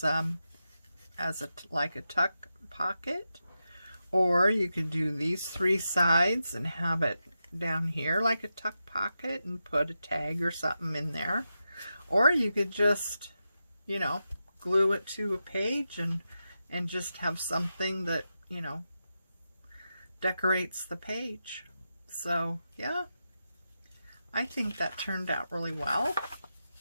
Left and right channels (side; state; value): both; inverted; correlation -0.89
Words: like a tuck pocket, or you could do these 3 sides and have it down here like a tuck pocket and put a tag or something in there, or you could just, you know, glue it to a page and just have something that, you know, decorates the page. So yeah, I think that turned out really well.